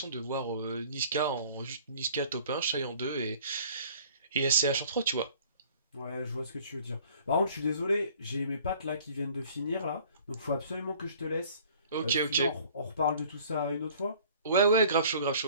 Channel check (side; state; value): both; inverted; correlation -0.52